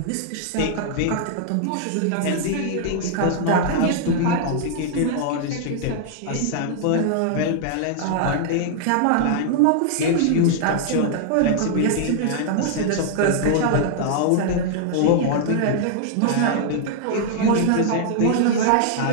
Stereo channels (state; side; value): different; both; correlation -0.01